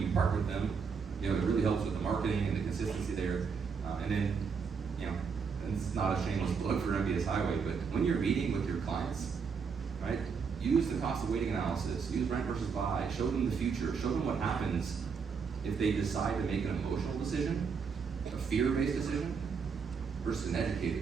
partner with them, it really helps with the marketing and the consistency there. And then, and it's not a shameless plug for MBS Highway, but when you're meeting with your clients, right, use the cost of waiting analysis, use rent versus buy, show them the future, show them what happens if they decide to make an emotional decision, a fear-based decision, versus an educated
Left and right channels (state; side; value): quieter; left; 5.8 dB